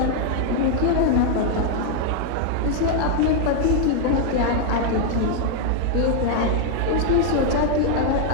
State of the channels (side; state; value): both; different; correlation 0.00